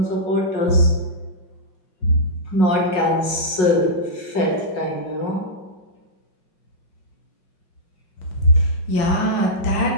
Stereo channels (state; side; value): late; right; 5.5 ms